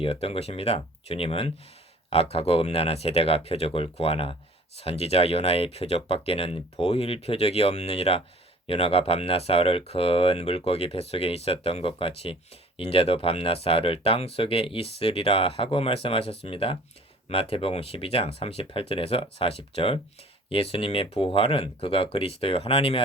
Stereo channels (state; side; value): normal; both; correlation 0.50